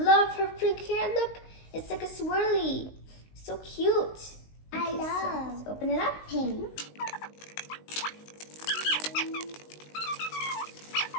her pink hair. Look, it's like a swirly. So cute. I So love let's open it up. pink.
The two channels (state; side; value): late; right; 19 ms